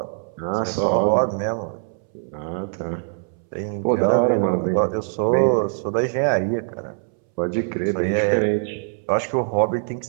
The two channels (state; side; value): silent; left; 64 dB below the other